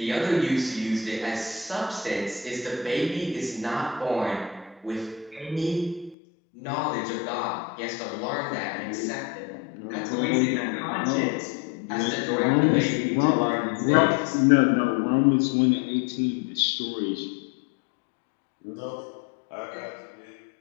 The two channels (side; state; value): right; drops out; at 6.2 s